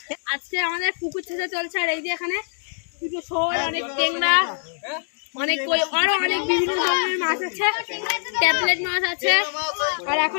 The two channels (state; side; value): silent; right; digital silence